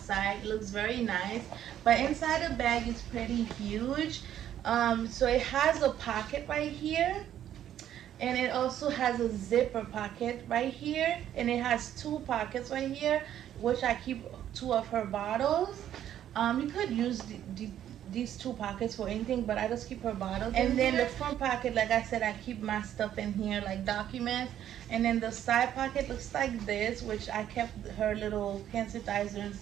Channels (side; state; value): left; quieter; 11.0 dB